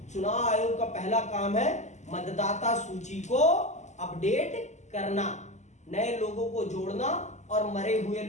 चुनाव आयोग का पहला काम है मतदाता सूची को अपडेट करना, नए लोगों को जोड़ना और मरे हुए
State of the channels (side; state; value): right; late; 0.34 ms